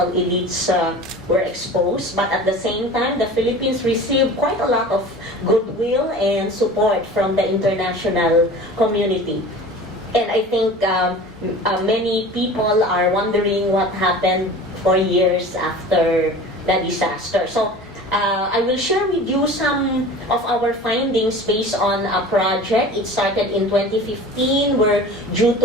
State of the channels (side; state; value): both; normal; correlation 0.39